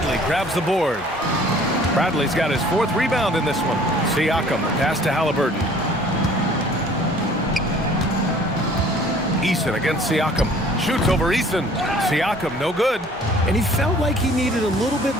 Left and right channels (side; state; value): both; normal; correlation 0.53